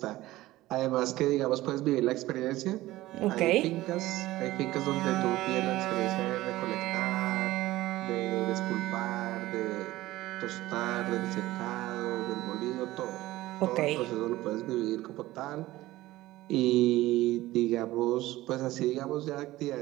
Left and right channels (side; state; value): left; quieter; 17.1 dB